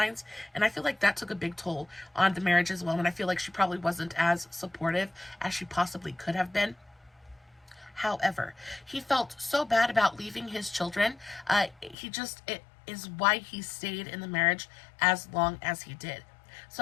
And I feel like that took a big toll on the marriage as well, and I feel like she probably wasn't as supportive as she possibly could have been. However, he felt so bad about leaving his children. It is why he stayed in the marriage as long as he did.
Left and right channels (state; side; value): drops out; right; at 12.0 s